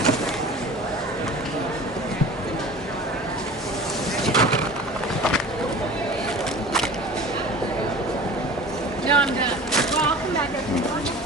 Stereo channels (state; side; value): normal; both; correlation 0.39